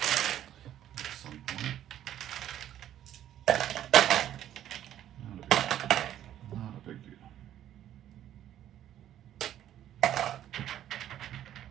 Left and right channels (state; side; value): quieter; left; 11.5 dB